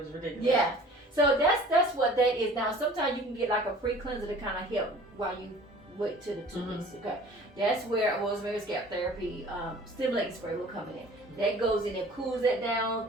ridiculous. Yeah. So that's what that is. Now sometimes you can get like a pre-cleanser to kind of help while you wait till the 2 weeks. Okay. That's where rosemary scalp therapy stimulating spray will come in. That goes in and cools that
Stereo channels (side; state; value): both; normal; correlation 0.47